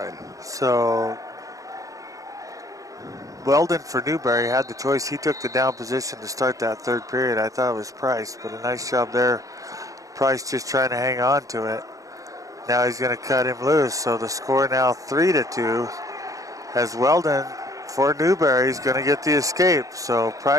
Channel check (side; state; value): left; late; 0.16 ms